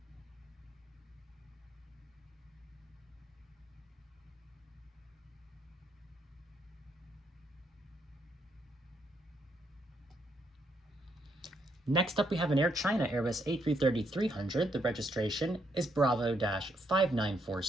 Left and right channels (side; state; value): both; normal; correlation 0.76